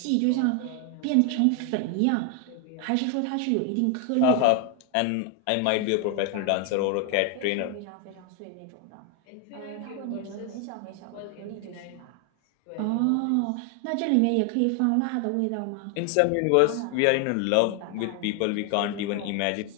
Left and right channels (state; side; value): different; both; correlation 0.01